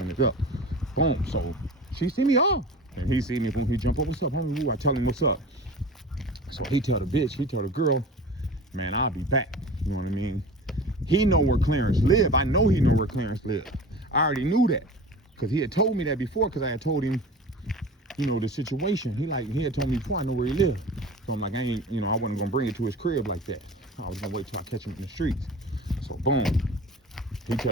it up. Boom. So she see me off, and he see me. Boom. He jump up. What's up, homie? Ooh, I tell him what's up. So he tell the girl, man, I'll be back. You know what I mean? He know where Clarence live. I know he know where Clarence live. I already knew that, because he had told me that before, because I had told him, you know, the situation. He had told me before, I know where he lived. So I'm like, I wasn't gonna bring it to his crib like that. I was gonna wait till I catch him in the streets. So boom, he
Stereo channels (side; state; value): both; normal; correlation 0.37